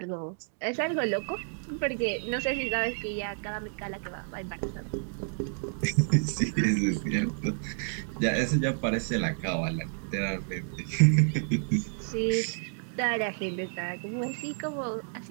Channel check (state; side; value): silent; left; digital silence